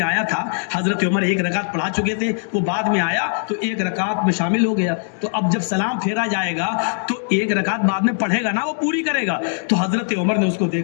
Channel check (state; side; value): silent; right; digital silence